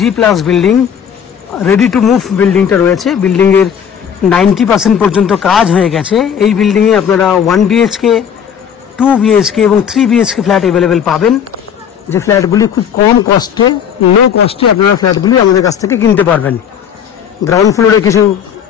building ready to move बिल्डिंगटा रयेछे। बिल्डिंगेर 90% पर्यन्त काज हये गेछे। एई बिल्डिंगे आपनारा 1 BHK 2 BHK এবং 3 BHK फ्लैट अवेलेबल पाबेन। जे फ्लैटगुली खूब कम कस्टे लो कस्टे आपनारा फ्लैटगुली आमादेर काछ थेके किनते पारबेन। ग्राउंड फ्लोरे किछु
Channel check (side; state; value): right; quieter; 8.2 dB